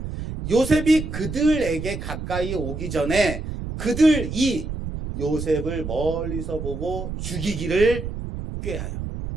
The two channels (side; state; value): right; noise; rumble, 6 dB below the sound